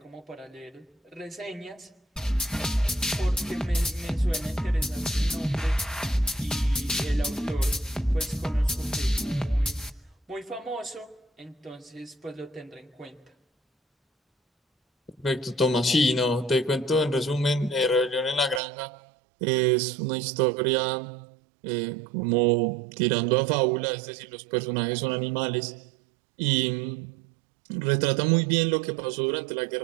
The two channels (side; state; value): left; drops out; at 18.6 s